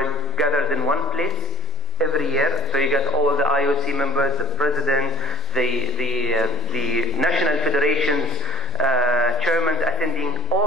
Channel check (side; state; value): both; normal; correlation 0.43